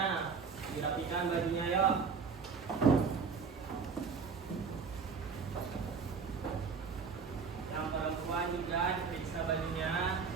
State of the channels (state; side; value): quieter; left; 5.5 dB